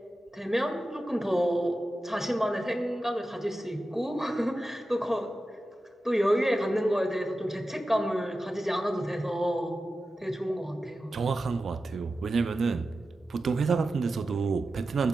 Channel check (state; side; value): normal; both; correlation 0.93